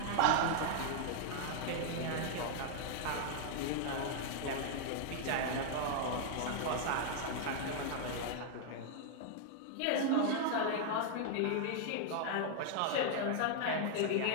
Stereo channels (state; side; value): different; both; correlation -0.01